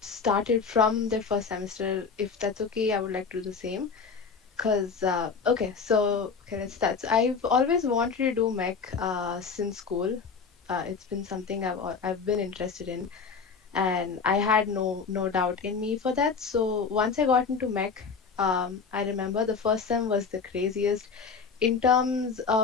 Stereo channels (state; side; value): quieter; right; 5.4 dB